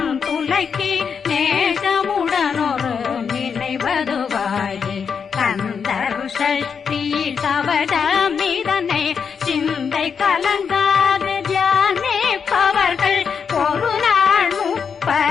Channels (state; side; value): quieter; right; 6.4 dB